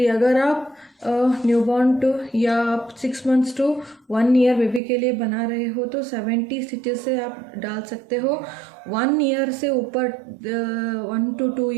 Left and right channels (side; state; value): left; drops out; at 4.8 s